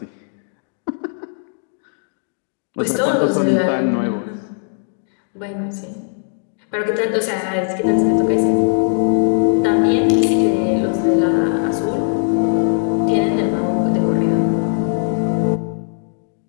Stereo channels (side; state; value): right; silent; 67 dB below the other